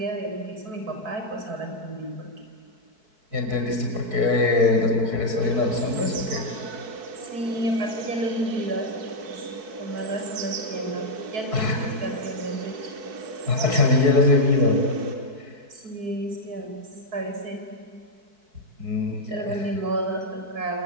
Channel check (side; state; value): left; late; 4.6 ms